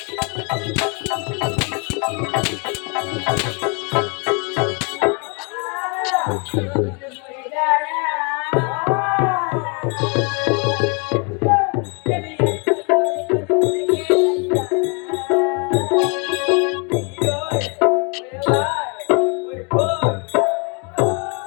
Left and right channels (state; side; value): quieter; right; 34.4 dB